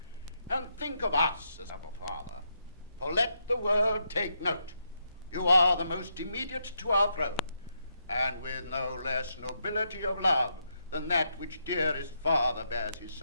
and think of us as of a father, for let the world take note, you are the most immediate to our throne, and with no less nobility of love than that which dearest father bears his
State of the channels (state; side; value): inverted; both; correlation -0.80